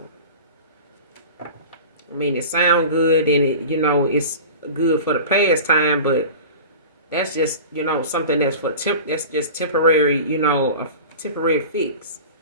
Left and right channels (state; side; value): inverted; both; correlation -0.35